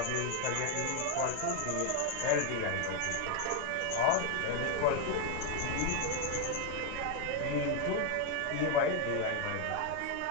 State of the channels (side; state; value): both; different; correlation 0.01